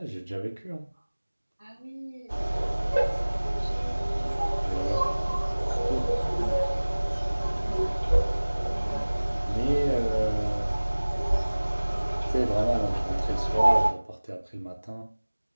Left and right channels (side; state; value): both; inverted; correlation -1.00